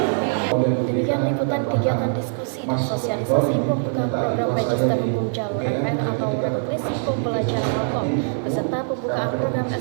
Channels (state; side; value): silent; left; 64 dB below the other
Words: Demikian liputan kegiatan diskusi dan sosialisasi pembukaan program Magister Hukum Jalur RPL atau Rekognisi Pembelajaran Hukum beserta pembukaan program